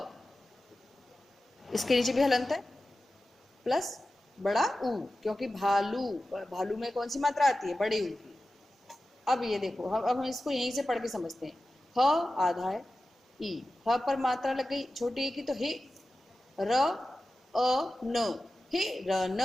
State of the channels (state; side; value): normal; both; correlation 0.94